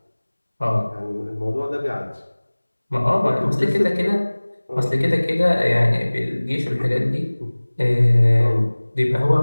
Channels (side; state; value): both; inverted; correlation -1.00